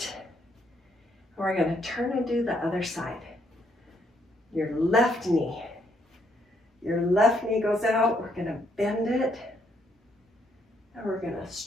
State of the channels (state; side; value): normal; both; correlation 0.72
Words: We're going to turn and do the other side. Your left knee. Your left knee goes out. We're going to bend it. And we're going to